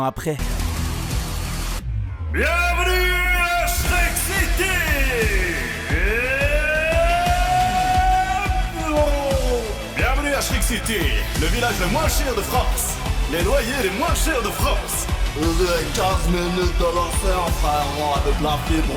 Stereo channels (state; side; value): identical; both; correlation 1.00